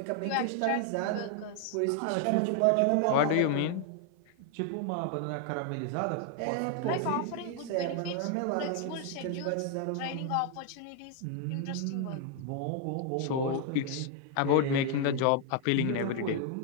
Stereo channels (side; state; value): both; different; correlation 0.00